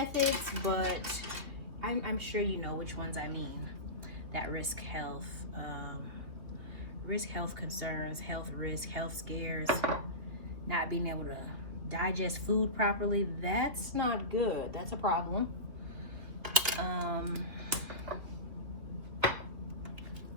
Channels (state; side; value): late; left; 2.6 ms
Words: but I'm sure you know which ones I mean. That risk health concerns, health risk, health scares, not being able to digest food properly. That's not good. That's a problem.